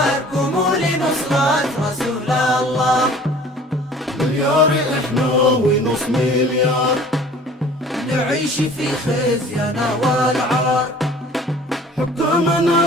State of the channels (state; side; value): normal; both; correlation 0.48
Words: قوموا لنصرة رسول الله. مليار إحنا ونص مليار، نعيش في خزينا والعار،